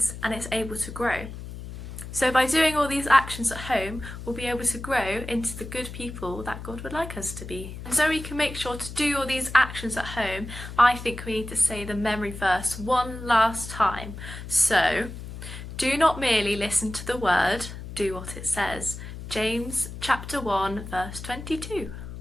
and it's able to grow. So by doing all these actions at home, we'll be able to grow into the good people that God would like us to be. And so we can make sure to do all these actions at home, I think we need to say the memory verse one last time. So, do not merely listen to the word, do what it says. James chapter 1 verse 22.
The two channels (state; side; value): noise; left; hum, 10 dB below the sound